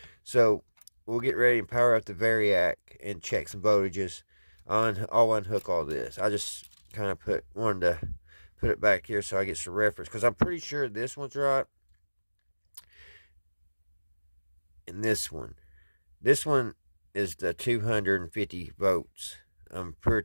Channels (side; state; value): both; inverted; correlation -1.00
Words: So we'll get ready and power up the Variac and check some voltages. I'll unhook all this. I just kind of wanted to put it back here so I get some reference, because I'm pretty sure this one's right and this one. This one is the 250 votes. I'm